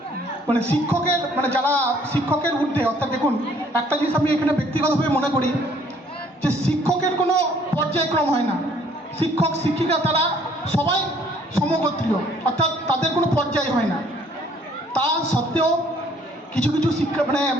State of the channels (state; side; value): normal; both; correlation 0.60